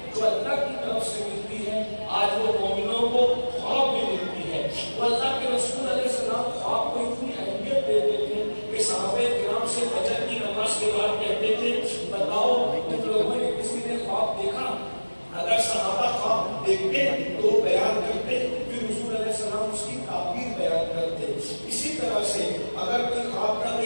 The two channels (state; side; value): inverted; both; correlation -1.00